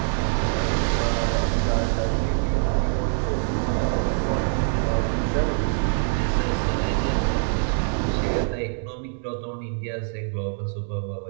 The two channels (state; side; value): silent; left; 62 dB below the other